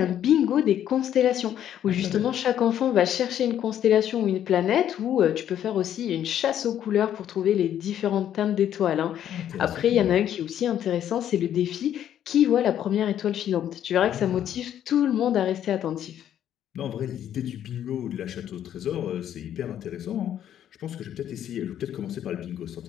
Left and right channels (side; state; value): right; quieter; 10.5 dB